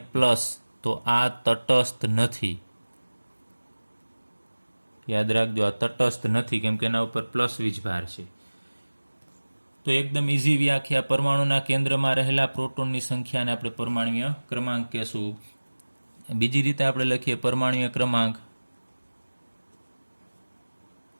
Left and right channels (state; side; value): inverted; both; correlation -1.00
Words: તો આ તટસ્થ નથી. યાદ રાખજો, આ તટસ્થ નથી, કેમ કે એના ઉપર પ્લસ વીજભાર છે. તો એકદમ ઇઝી વ્યાખ્યા. પરમાણુના કેન્દ્રમાં રહેલા પ્રોટોનની સંખ્યાને આપણે પરમાણ્વીય ક્રમાંક કહેશું. બીજી રીતે આપણે લખીએ પરમાણ્વીય